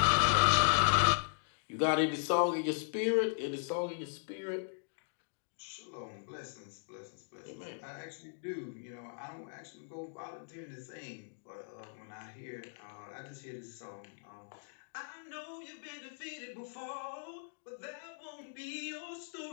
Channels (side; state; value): right; silent; digital silence